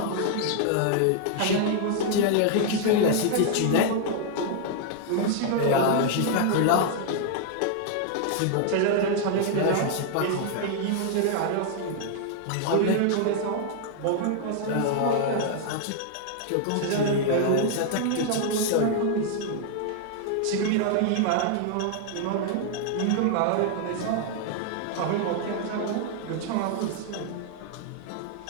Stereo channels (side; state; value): both; different; correlation 0.00